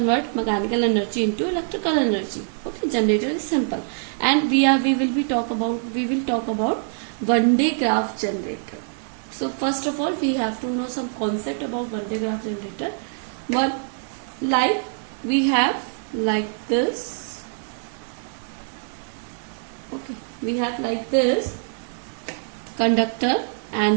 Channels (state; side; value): silent; left; digital silence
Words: mechanical energy into electrical energy. Okay, generator is simple, and we will talk about Van de Graaff generator. So first of all, we have to know some concept about Van de Graaff generator. One, like we have like this. Okay, we have like this conductor,